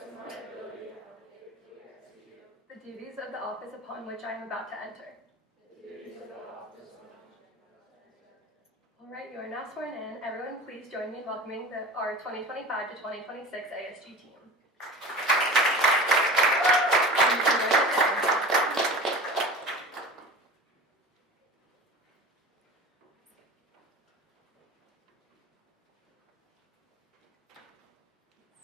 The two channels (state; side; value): normal; both; correlation 0.35